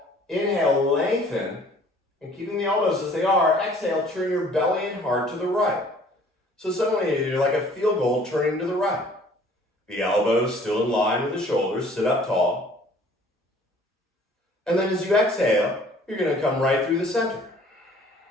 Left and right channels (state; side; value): normal; both; correlation 0.54